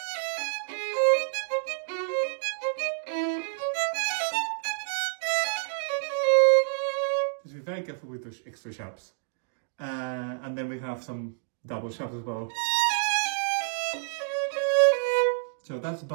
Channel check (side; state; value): left; silent; digital silence